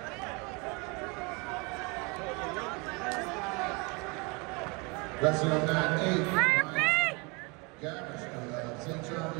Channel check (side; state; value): left; quieter; 29.1 dB